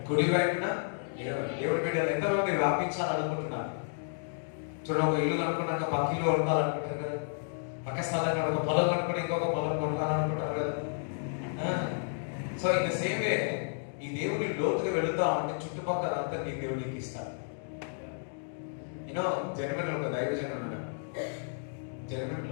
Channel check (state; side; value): silent; right; digital silence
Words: కుడి వైపున దేవుడి బిడ్డలు ఎంతమంది వ్యాపించాలనుకుంటున్నారు? చూడండి, ఒక ఇల్లు కనుక్కున్నాక పక్క ఇల్లు కొనుక్కోవాలనుకుంటారు కదా, పక్క స్థలం ఒక పొలం కనుక్కుంటే ఇంకొక పొలం కొనుక్కోవాలనుకుంటారు కదా. So in the same way ఈ దేవుని లోతుగా వెళుతా ఉంటే చుట్టుపక్కల అంతా నీ దేవునికి ఇస్తాడు. యూనో జర్మనీలో ఒక దైవజనం ఉన్నాడు.